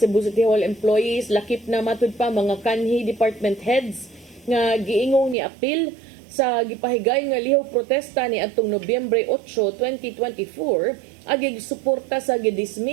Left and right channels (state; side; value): drops out; left; at 5.4 s